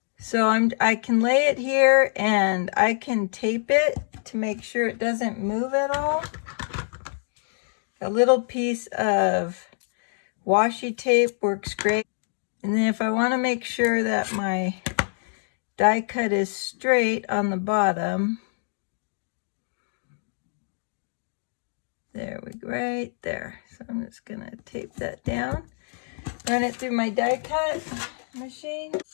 So I can lay it here and I can tape it to make sure it doesn't move at all. A little piece of washi tape works great. And then if I want to make sure that my die cut is straight on the bottom, there we go, right there. So I'm just gonna tape that down, run it through my die cut machine.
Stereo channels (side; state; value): right; silent; 61 dB below the other